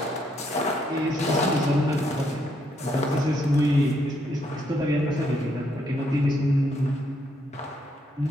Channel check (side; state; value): both; normal; correlation 0.74